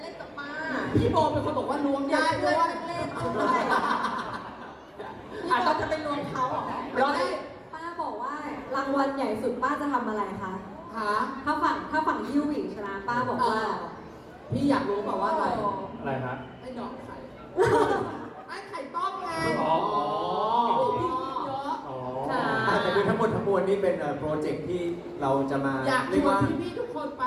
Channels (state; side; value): identical; both; correlation 1.00